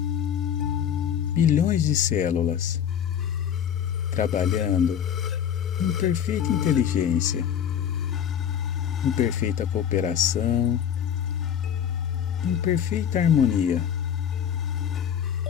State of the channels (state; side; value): quieter; right; 8.9 dB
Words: bilhões de células, trabalhando em perfeita inteligência, em perfeita cooperação, em perfeita harmonia.